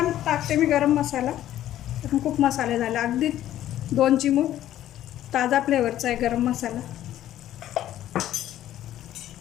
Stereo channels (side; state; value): right; quieter; 12.7 dB